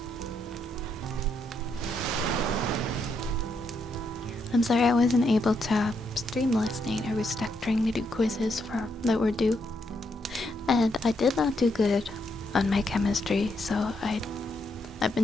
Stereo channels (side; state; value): both; normal; correlation 0.78